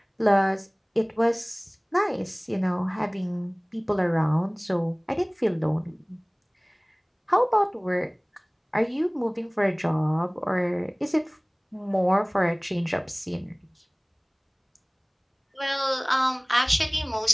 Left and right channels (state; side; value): identical; both; correlation 1.00